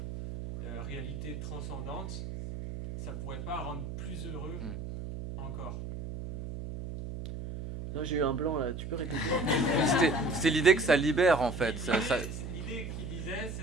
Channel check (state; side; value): noise; right; hum, 7 dB below the sound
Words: réalité transcendante, ça pourrait pas rendre plus heureux encore? Non, j'ai eu un blanc là, tu peux répéter? C'était l'idée que ça libère en fait. L'idée qu'il disait,